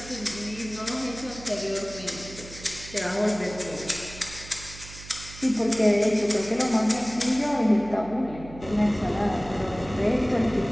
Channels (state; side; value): noise; right; hum, 16 dB below the sound